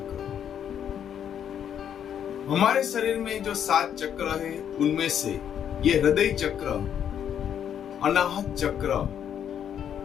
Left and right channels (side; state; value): right; quieter; 9.1 dB